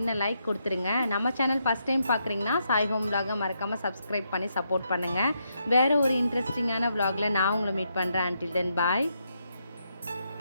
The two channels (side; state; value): both; inverted; correlation -0.80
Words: லைக் கொடுத்துருங்க. நம்ம சேனல் ஃபஸ்ட் டைம் பார்க்குறீங்கன்னா சாய் ஹோம் vlog மறக்காமல் சப்ஸ்கிரைப் பண்ணி சப்போர்ட் பண்ணுங்கள். வேறு ஒரு இன்ட்ரெஸ்டிங்கான vlogல நான் உங்களை மீட் பண்ணுறேன். until then bye.